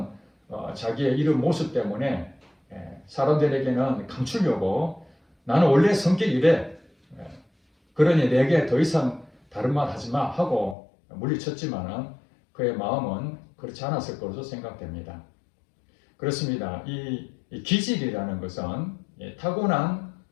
자기의 이런 모습 때문에 사람들에게는 감추려고 나는 원래 성격이 이래. 그러니 내게 더 이상 다른 말 하지 마 하고 물리쳤지만은 그의 마음은 그렇지 않았을 것으로 생각됩니다. 그렇습니다. 이 기질이라는 것은 타고난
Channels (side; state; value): right; drops out; at 10.8 s